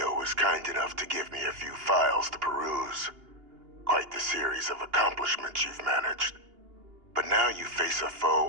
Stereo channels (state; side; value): late; left; 2.8 ms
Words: was kind enough to give me a few files to peruse. Quite the series of accomplishments you've managed. But now you face a